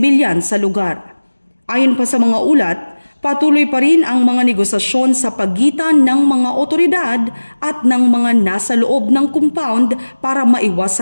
sa lugar. Ayon pa sa mga ulat, patuloy pa rin ang mga negosasyon sa pagitan ng mga otoridad at ng mga nasa loob ng compound para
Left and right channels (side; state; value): both; inverted; correlation -1.00